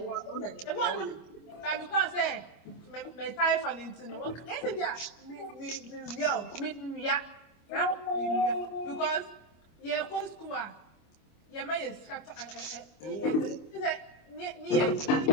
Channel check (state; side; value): late; right; 25 ms